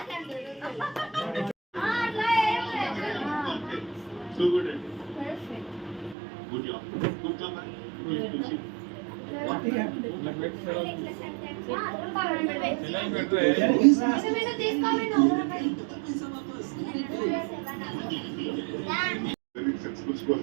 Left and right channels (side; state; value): left; drops out; at 6.2 s